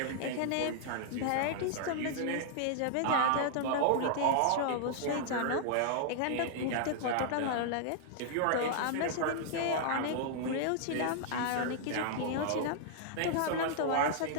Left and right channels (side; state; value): both; different; correlation -0.01